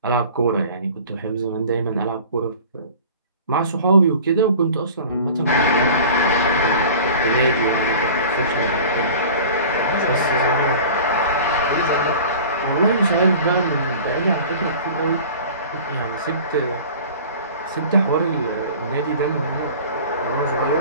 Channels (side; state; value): both; inverted; correlation -0.41